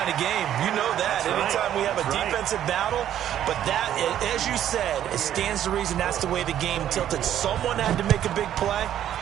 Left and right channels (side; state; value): left; quieter; 11.0 dB